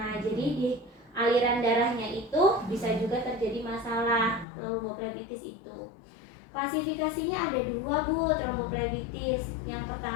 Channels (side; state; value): right; drops out; at 4.5 s